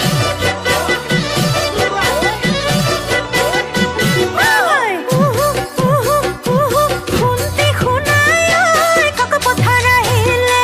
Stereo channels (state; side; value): identical; both; correlation 1.00